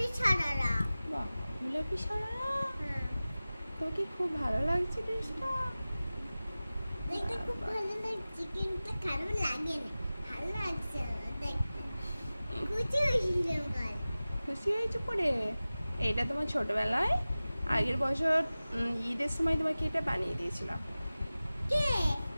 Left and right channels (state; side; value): inverted; both; correlation -0.97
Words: সারারা। বাহ, গোলাপি সারারা। হ্যাঁ, তোমাকে খুব ভালো লাগছে ড্রেসটা? দেখতে খুব ভালো লাগছে, কিন্তু খারাপ লাগে না, ভালো লাগছে আমার দেখতে। খুশি হয়েছিলাম কাল। খুশি হয়েছো পরে? এইটা তোমার ছোটবেলায় আগের বছর ঈদের সময় তোমাকে এটা বানিয়ে দিয়েছিলাম। কে?